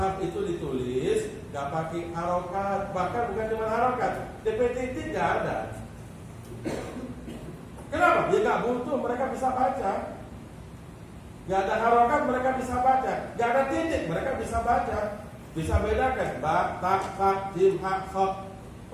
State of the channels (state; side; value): identical; both; correlation 1.00